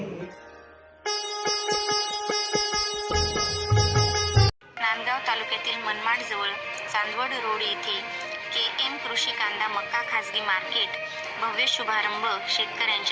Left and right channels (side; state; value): both; identical; correlation 1.00